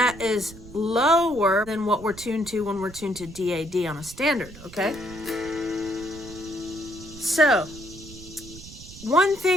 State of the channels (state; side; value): noise; right; rumble, 17 dB below the sound